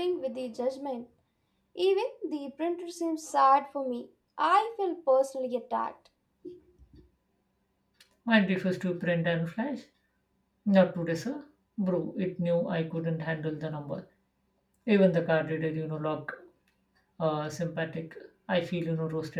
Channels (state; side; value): identical; both; correlation 1.00